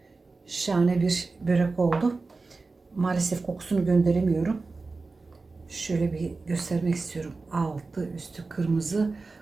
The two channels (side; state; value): left; quieter; 3.8 dB